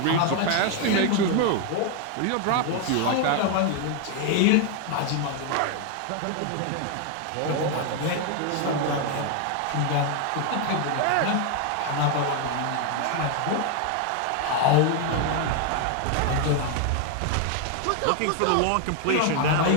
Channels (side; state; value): both; different; correlation 0.01